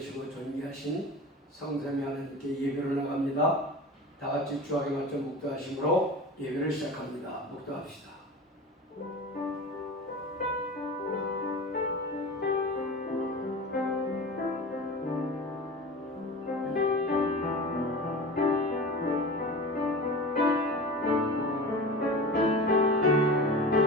존귀하신 성삼위 하나님께 예배를 나갑니다. 다같이 주하게 맞춰 묵도하심으로 예배를 시작합니다. 묵도합시다.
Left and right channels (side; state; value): both; normal; correlation 0.32